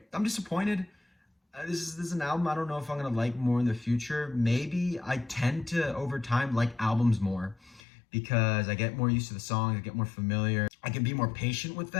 I'm disappointed. This is an album I don't know if I'm going to like more in the future. Maybe I tend to, over time, like albums more because I get more used to the songs, I get more familiar. I can be more patient with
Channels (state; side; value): drops out; right; at 7.8 s